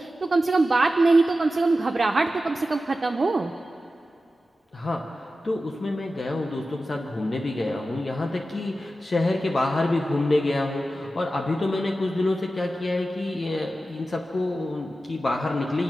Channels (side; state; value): both; normal; correlation 0.93